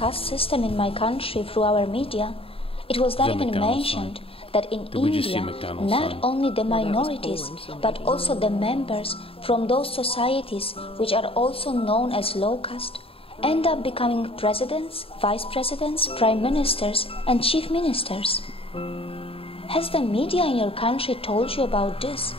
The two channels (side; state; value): right; late; 0.27 ms